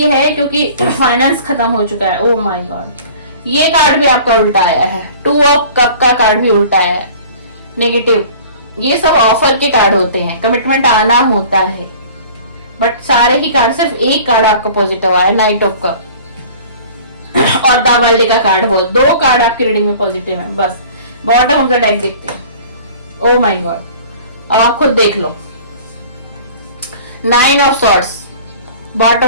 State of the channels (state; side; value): inverted; both; correlation -0.46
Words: है क्योंकि फाइनेंस खत्म हो चुका है। ओह माय गॉड, ये कार्ड भी आपका उल्टा आया है। 2 ऑफ कप का कार्ड भी उल्टा है, नेगेटिव। ये सब ऑफर के कार्ड होते हैं, कमिटमेंट आना होता है, बट सारे ही कार्ड, सिर्फ एक कार्ड आपका पॉजिटिव आया, नाइट ऑफ कप और द वर्ल्ड का कार्ड। बोल 2 कार्ड आपकी रीडिंग में पॉजिटिव है। बस बॉटम ऑफ द डेक देखते हैं। ओ माय गॉड, अब आप खुद देख लो। 9 of swords bottom